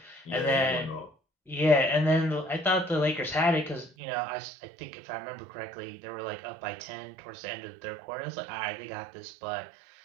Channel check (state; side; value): drops out; left; at 3.9 s